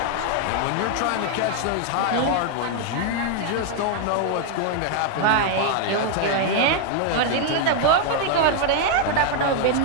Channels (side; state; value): both; different; correlation 0.00